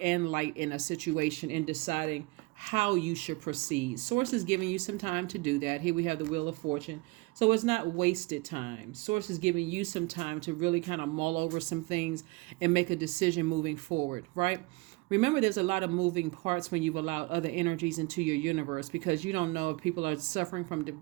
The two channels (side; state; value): left; quieter; 24.4 dB